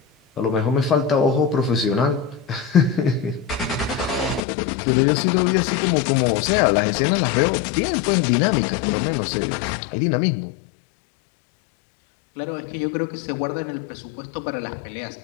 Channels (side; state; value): right; drops out; at 4.5 s